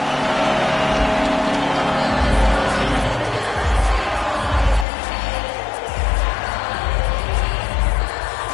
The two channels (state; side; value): drops out; right; at 4.9 s